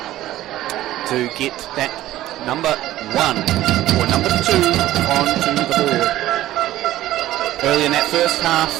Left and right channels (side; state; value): left; quieter; 14.7 dB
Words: to get that number 1 or number 2 onto the board. Early in that first half,